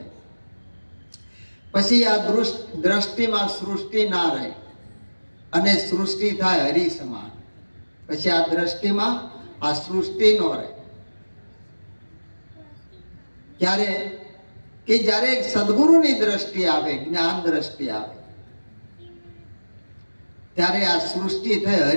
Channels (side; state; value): both; inverted; correlation -1.00